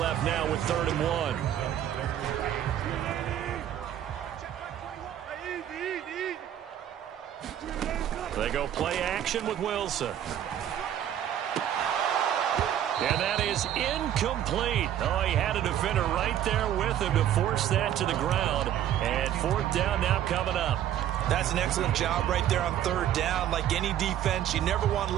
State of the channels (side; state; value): left; quieter; 10.9 dB